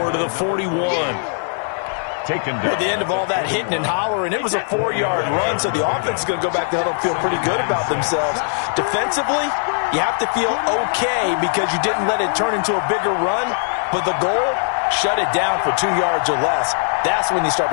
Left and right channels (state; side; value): silent; right; 66 dB below the other